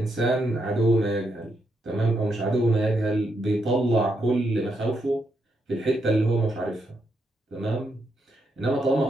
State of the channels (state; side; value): normal; both; correlation 0.80